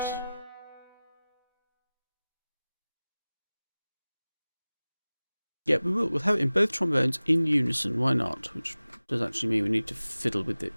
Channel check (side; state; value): both; inverted; correlation -0.98